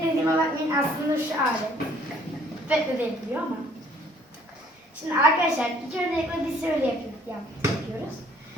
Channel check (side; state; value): both; normal; correlation 0.59